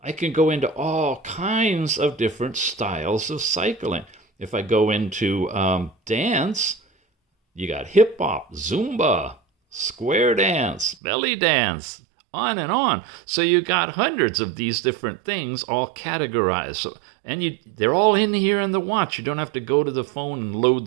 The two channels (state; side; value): drops out; left; at 11.0 s